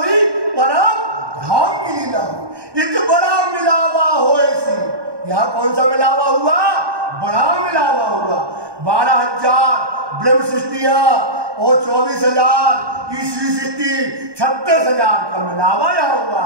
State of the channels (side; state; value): left; late; 1.2 ms